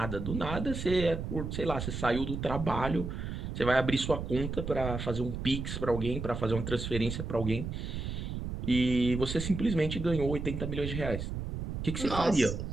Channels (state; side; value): noise; right; rumble, 5 dB below the sound